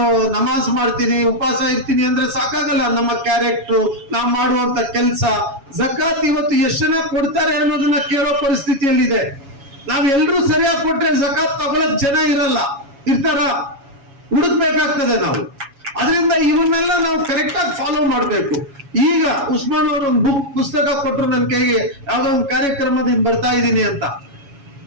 ನಮಾಜ್ ಮಾಡ್ತೀನಿ, ಉಪವಾಸ ಇರ್ತೀನಿ ಅಂದ್ರೆ ಸಾಕಾಗಲ್ಲ. ನಮ್ಮ ಕ್ಯಾರೆಕ್ಟರ್, ನಾವು ಮಾಡುವಂತ ಕೆಲಸ, ಜಕಾತ್ ಇವತ್ತು ಎಷ್ಟು ಜನ ಕೊಡ್ತಾರೆ ಅನ್ನೋದನ್ನ ಕೇಳೋ ಪರಿಸ್ಥಿತಿಯಲ್ಲಿದೆ. ನಾವೆಲ್ಲರೂ ಸರಿಯಾಗಿ ಕೊಟ್ರೆ ಜಕಾತ್ ತಗೊಳಕ್ ಜನ ಇರ್ತಾರ, ಹುಡುಕ್ಬೇಕಾಗ್ತದೆ ನಾವು. ಅದರಿಂದ ಇವನ್ನೆಲ್ಲ ನಾವು ಕರೆಕ್ಟ್ ಆಗಿ ಫಾಲೋ ಮಾಡ್ಬೇಕು. ಈಗ ಉಸ್ಮಾನ್ ಅವರು ಒಂದು ಪುಸ್ತಕ ಕೊಟ್ಟರು ನನ್ನ ಕೈಗೆ, ಯಾವ್ದೋ ಒಂದು ಕಾರ್ಯಕ್ರಮದಿಂದ ಬರ್ತಾ ಇದ್ದೀನಿ ಅಂತ.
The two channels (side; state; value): left; late; 7.2 ms